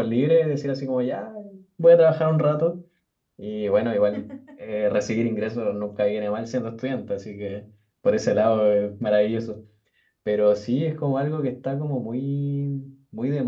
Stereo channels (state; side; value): identical; both; correlation 1.00